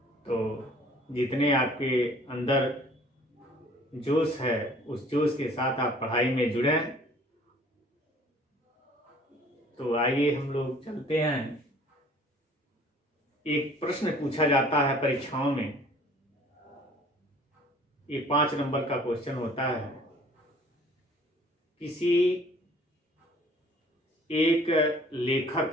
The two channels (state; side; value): normal; both; correlation 0.53